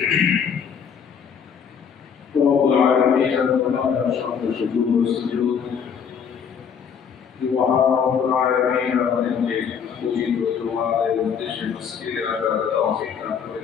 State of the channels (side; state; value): right; quieter; 7.1 dB